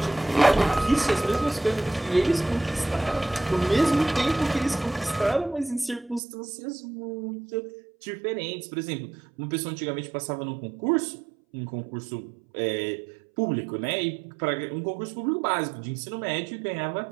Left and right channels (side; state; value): left; drops out; at 6.2 s